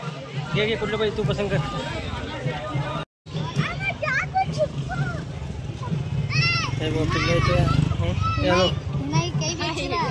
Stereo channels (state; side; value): identical; both; correlation 1.00